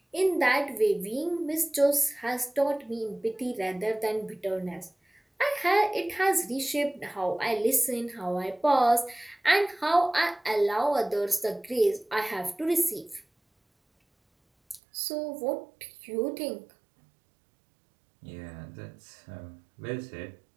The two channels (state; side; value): drops out; left; at 14.8 s